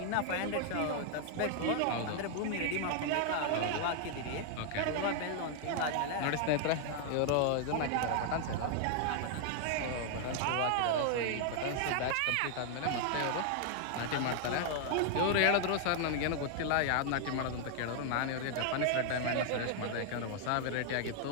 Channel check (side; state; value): both; different; correlation 0.00